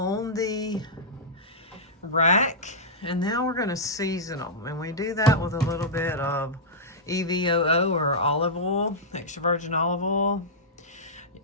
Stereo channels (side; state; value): both; normal; correlation -0.11